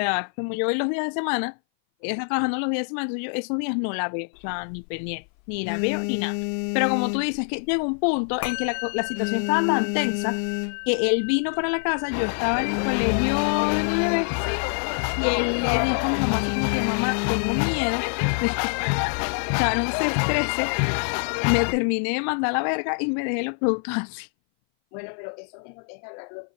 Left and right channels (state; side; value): silent; right; 59 dB below the other